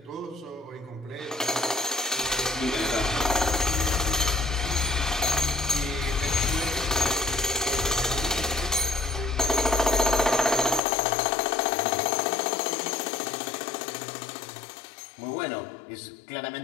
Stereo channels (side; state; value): right; drops out; at 10.8 s